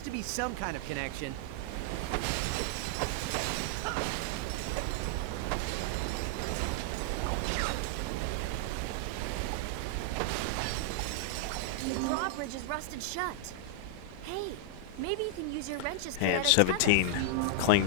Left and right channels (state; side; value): different; both; correlation -0.01